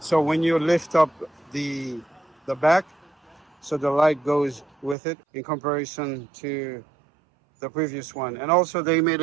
when you lift up the back, so the light goes with it in comparison to the previous one. And also they made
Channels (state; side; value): drops out; left; at 5.0 s